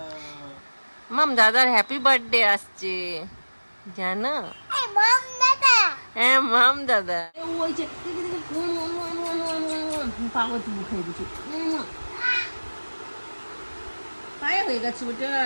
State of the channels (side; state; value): both; inverted; correlation -1.00